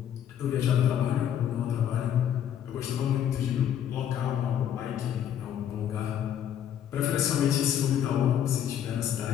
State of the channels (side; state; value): right; quieter; 9.8 dB